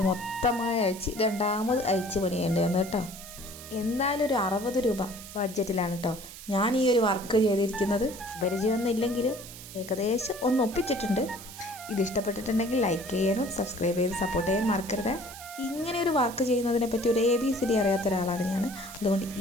മൊത്തമായി അയച്ച് രണ്ടാമത് അയച്ച് പണിയേണ്ടി വന്നു കേട്ടോ. എന്തായാലും ഒരു 60 രൂപ ബഡ്ജറ്റിലാണ് കേട്ടോ ഞാൻ ഈ ഒരു വർക്ക് ചെയ്തിരിക്കുന്നത്. പരിചയമൊന്നും ഇല്ലെങ്കിലും ഏകദേശം ഒന്ന് ഒപ്പിച്ചിട്ടുണ്ട്. ഇത് ഇഷ്ടപ്പെട്ടിട്ടുണ്ടെങ്കിൽ ലൈക്ക് ചെയ്യാനും സബ്സ്ക്രൈബ് ചെയ്ത് സപ്പോർട്ട് ചെയ്യാൻ മറക്കരുത്. ഇങ്ങനെ ഒരു വർക്ക് ചെയ്യുന്നതിനെ പറ്റി ഒരു ABCD അറിയാത്ത ഒരാളാണ് ഞാൻ. അതുകൊണ്ട്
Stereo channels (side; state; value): right; noise; hiss, 14 dB below the sound